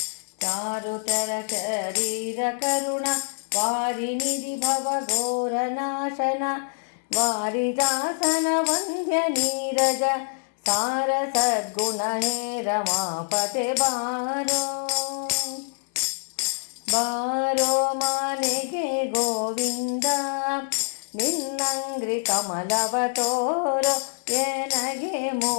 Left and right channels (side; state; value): right; silent; 61 dB below the other